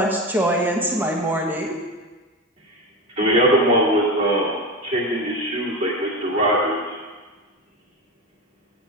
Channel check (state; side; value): normal; both; correlation 0.21